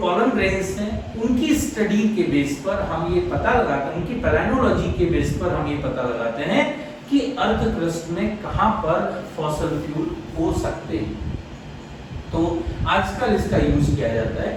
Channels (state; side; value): identical; both; correlation 1.00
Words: पॉलन ग्रेन्स हैं उनकी स्टडी के बेस पर हम ये पता लगाते हैं, उनकी पैलाइनोलॉजी के बेस पर हम ये पता लगाते हैं कि अर्थ क्रस्ट में कहां पर फॉसिल फ्यूल हो सकते हैं. तो आजकल इसका यूज किया जाता है.